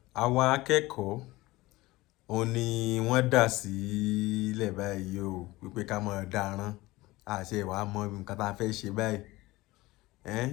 àwọn akẹ́kọ̀ọ́ òun ni wọ́n dà sílẹ̀ báyìí o wípé ká máa dáràn àṣẹ ìwà mọ nǹkan tá a fẹ́ ṣe báyìí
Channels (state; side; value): quieter; right; 19.5 dB